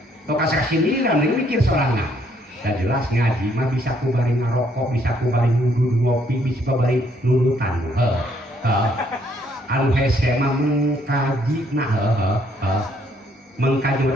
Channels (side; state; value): both; normal; correlation 0.68